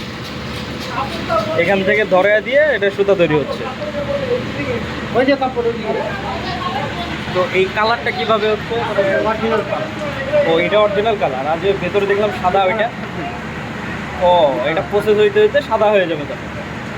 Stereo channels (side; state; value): both; identical; correlation 1.00